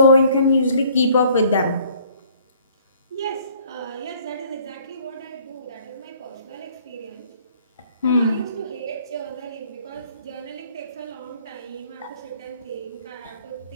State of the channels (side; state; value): both; inverted; correlation -0.58